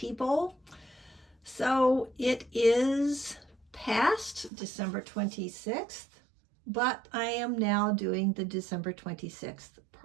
So it is past December 26th, but I am now doing the December 26th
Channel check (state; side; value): drops out; left; at 4.5 s